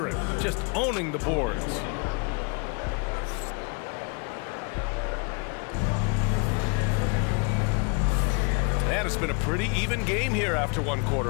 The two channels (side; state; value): right; quieter; 34.0 dB